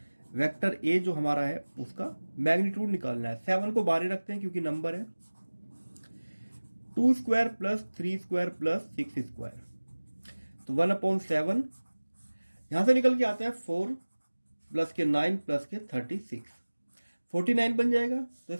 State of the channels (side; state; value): both; inverted; correlation -1.00